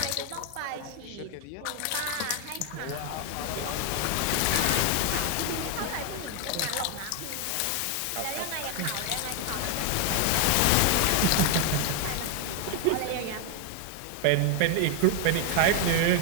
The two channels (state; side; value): different; both; correlation 0.00